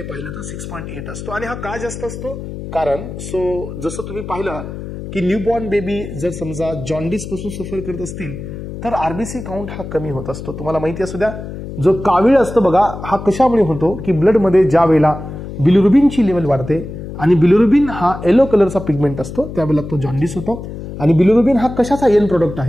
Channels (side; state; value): left; noise; hum, 10 dB below the sound